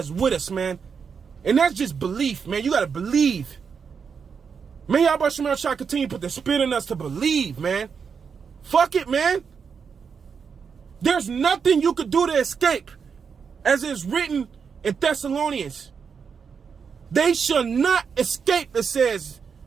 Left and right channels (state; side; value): quieter; left; 6.2 dB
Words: with us, man. And that's just belief, man. You got to believe. May Yahweh Shem Shai continue to put the spirit in us to believe, man. Fuck it, man. There's nothing you could do to escape. As it's written in Thessalonians. They shall not escape, it says.